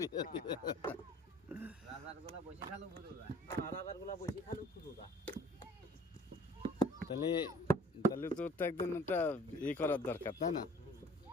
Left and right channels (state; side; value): normal; both; correlation 0.52